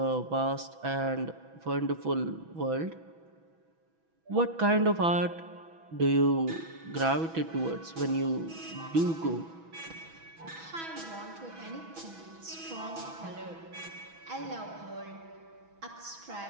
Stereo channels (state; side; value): late; left; 6.1 ms